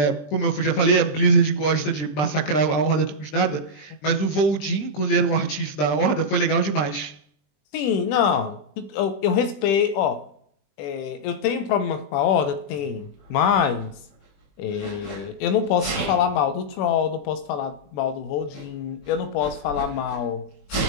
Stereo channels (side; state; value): right; late; 20 ms